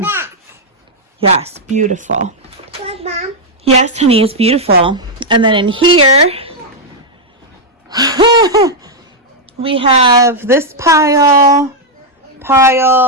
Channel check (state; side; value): normal; both; correlation -0.02